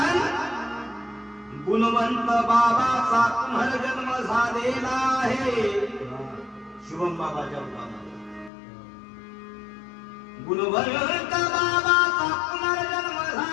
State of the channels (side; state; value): right; drops out; at 8.5 s